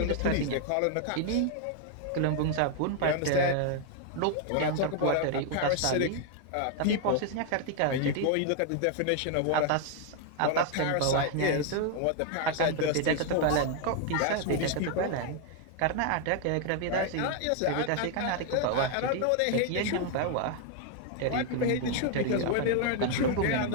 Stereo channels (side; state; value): both; different; correlation 0.00